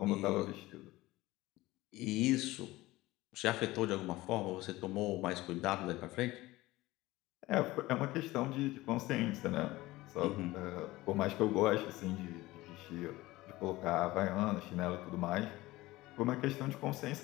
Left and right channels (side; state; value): right; quieter; 18.7 dB